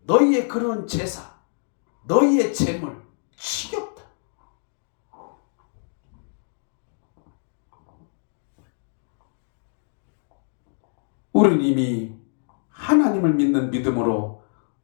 너희의 그런 제사, 너희의 제물 지겹다. 우리는 이미 하나님을 믿는 믿음으로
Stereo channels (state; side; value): silent; right; digital silence